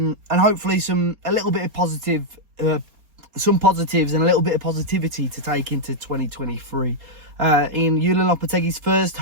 hopefully some positives and a little bit of positivity to take into 2023. In Julian Lopetegui's first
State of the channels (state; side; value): late; left; 4.3 ms